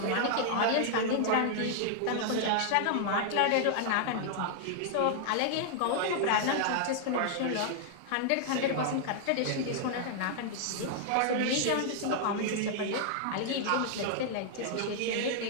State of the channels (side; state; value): both; different; correlation -0.01